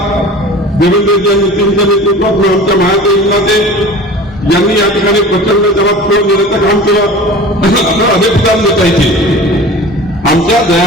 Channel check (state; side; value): normal; both; correlation 0.38